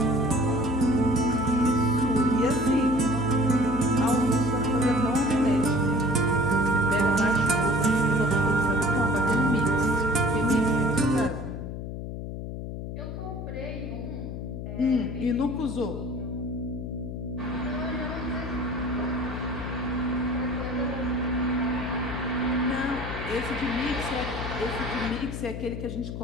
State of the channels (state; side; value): noise; left; hum, 7 dB below the sound